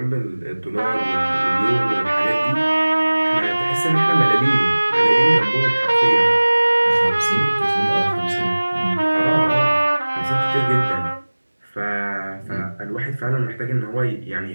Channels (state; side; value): inverted; both; correlation -1.00